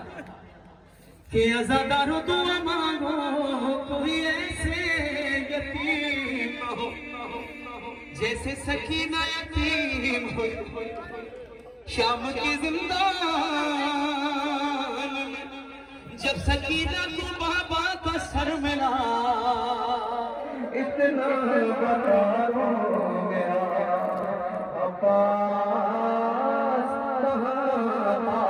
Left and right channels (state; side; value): identical; both; correlation 1.00